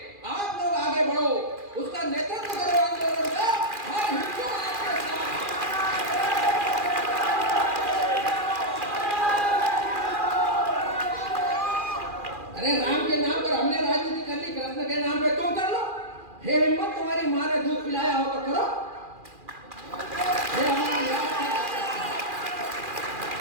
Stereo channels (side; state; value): left; late; 2.4 ms